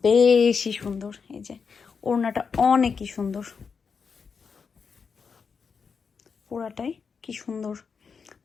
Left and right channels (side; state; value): right; quieter; 5.7 dB